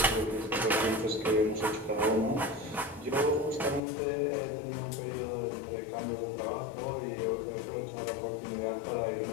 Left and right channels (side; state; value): right; drops out; at 3.8 s